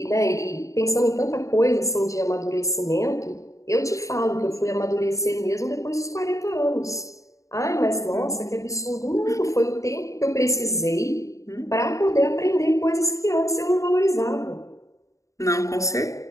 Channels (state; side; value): late; right; 0.15 ms